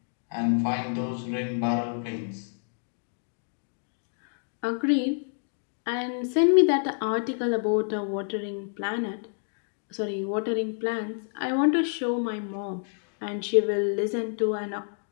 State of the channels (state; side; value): silent; right; digital silence